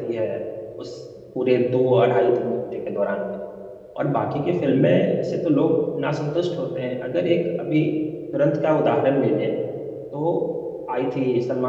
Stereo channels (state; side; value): identical; both; correlation 1.00